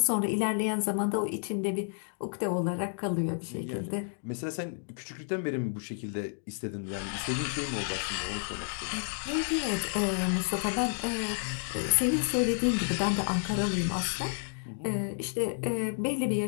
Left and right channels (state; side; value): silent; right; 57 dB below the other